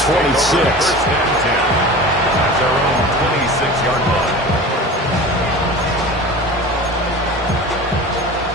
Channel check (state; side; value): normal; both; correlation 0.35